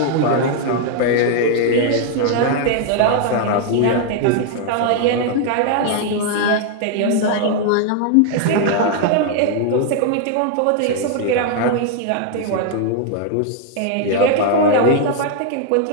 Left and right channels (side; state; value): both; different; correlation 0.00